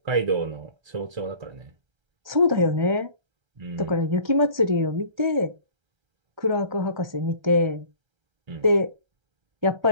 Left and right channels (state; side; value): late; left; 1.3 ms